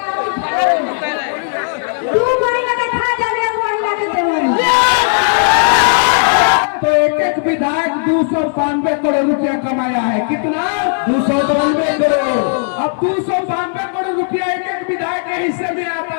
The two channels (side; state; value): right; silent; digital silence